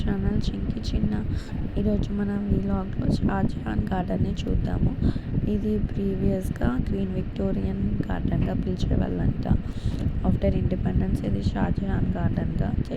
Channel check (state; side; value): identical; both; correlation 1.00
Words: Chinki Chinna. ఈరోజు మనం వ్లాగ్లో షాజహాన్ గార్డెన్ని చూద్దాము. ఇది ప్రీవియస్గా క్వీన్ విక్టోరియన్ గార్డెన్గా పిలిచేవాళ్ళంట. ఆఫ్టర్ ఇండిపెండెన్స్ ఇది షాజహాన్ గార్డెన్గా